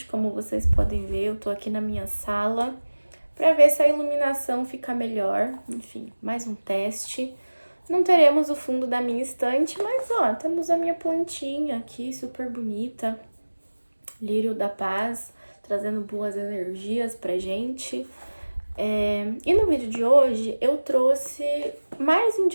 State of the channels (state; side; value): inverted; both; correlation -1.00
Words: como vocês podem ver. Eu tô aqui na minha sala para ver se a iluminação fica melhor. Enfim, mais um teste. Não teremos o fundo da minha estante, mas ó, temos a minha plantinha aqui, super bonita. Lírio da Paz, trazendo boas energias pra gente. E no vídeo de hoje eu trouxe mais